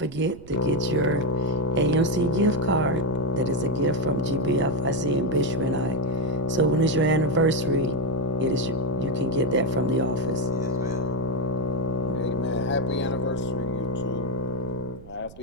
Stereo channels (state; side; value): noise; right; rumble, 19 dB below the sound